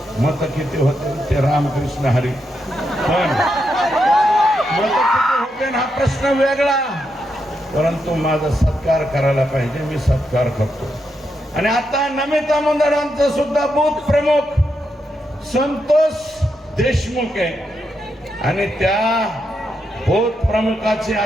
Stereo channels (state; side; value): normal; both; correlation 0.83